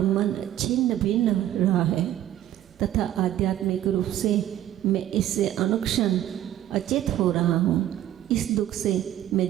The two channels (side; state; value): left; quieter; 12.5 dB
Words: मन छिन्न भिन्न रहा है तथा आध्यात्मिक रूप से मैं इससे अनुक्षण अचेत हो रहा हूँ। इस दुख से मैं